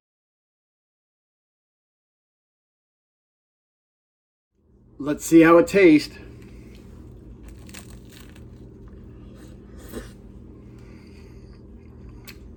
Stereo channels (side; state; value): both; identical; correlation 1.00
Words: Let's see how it tastes.